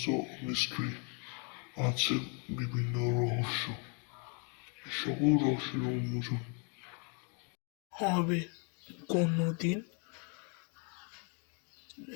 মিস্ট্রি, আছে বিভিন্ন রহস্য। সকল রহস্যের উন্মোচন হবে কোনোদিন।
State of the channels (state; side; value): quieter; right; 37.8 dB